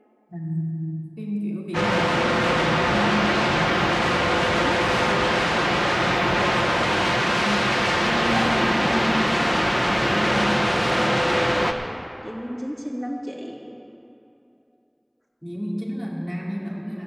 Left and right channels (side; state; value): both; identical; correlation 1.00